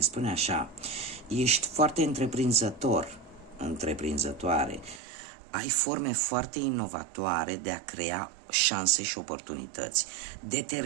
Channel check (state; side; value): drops out; left; at 5.0 s